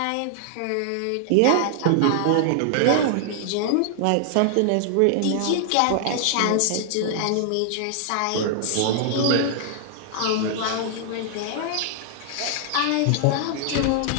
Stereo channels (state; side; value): different; both; correlation 0.00